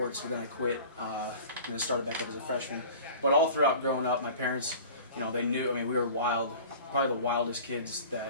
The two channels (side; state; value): both; inverted; correlation -0.42